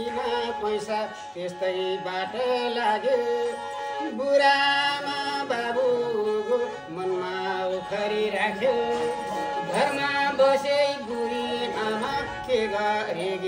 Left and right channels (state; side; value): identical; both; correlation 1.00